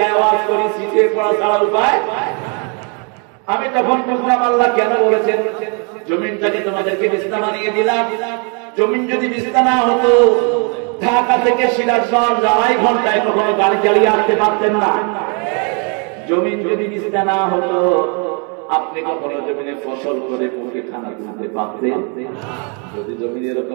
আওয়াজ করি সিটে পড়া ছাড়া উপায়। আমি তখন বুঝলাম আল্লাহ কেন বলেছেন জমিনটাকে তোমাদেরকে বিছনা বানিয়ে দিলাম। জমিন যদি বিছনা না হতো ঢাকা থেকে সিরাজগঞ্জ 2.5 ঘন্টায় কখনো গাড়ি চালিয়ে আসতে পারতেন না। জমিন যদি বিছনা না হতো আপনি কখনো জমিনে ফসল করে মুখে খানা তুলতে পারতেন। যদি জমিন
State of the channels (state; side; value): quieter; left; 36.8 dB